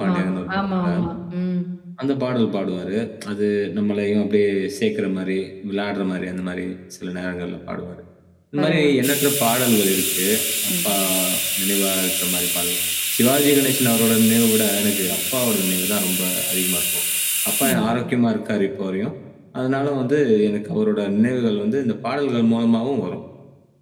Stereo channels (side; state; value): both; identical; correlation 1.00